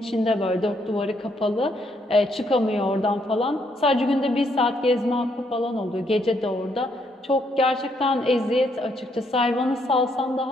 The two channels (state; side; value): normal; both; correlation 0.73